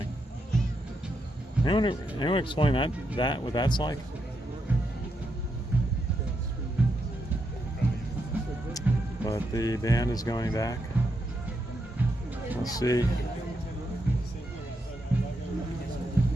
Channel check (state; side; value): normal; both; correlation 0.82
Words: Anyone explain that what that's like? But the band is going back. Let's see.